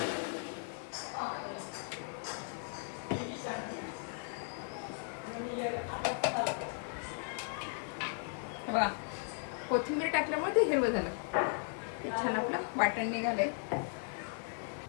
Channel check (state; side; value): silent; right; 53 dB below the other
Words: बघा कोथिंबीर टाकल्यामुळे ते हिरवं झालं, ते छान आपलं वाटण निघालंय.